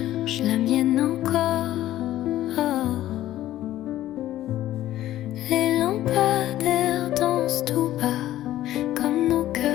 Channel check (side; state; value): right; quieter; 13.8 dB